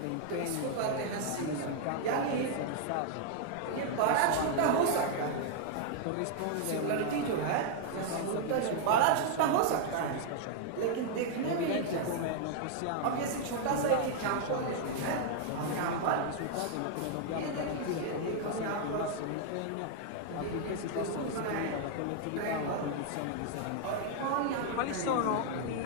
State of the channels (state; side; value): different; both; correlation 0.00